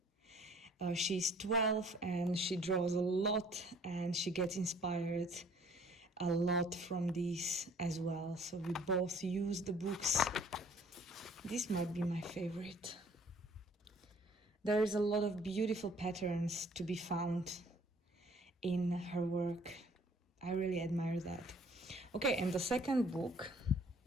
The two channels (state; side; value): normal; both; correlation 0.57